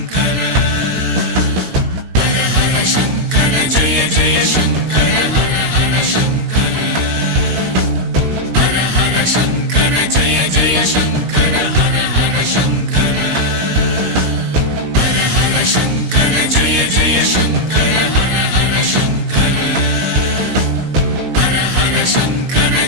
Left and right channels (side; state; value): left; late; 17 ms